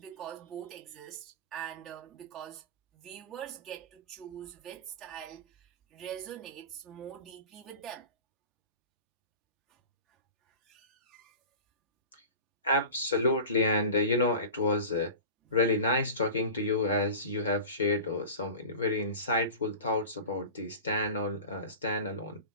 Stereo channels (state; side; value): inverted; both; correlation -0.35